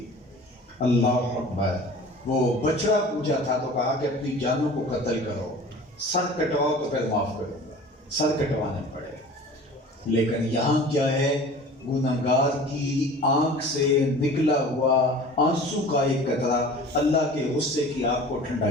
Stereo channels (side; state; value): both; normal; correlation 0.42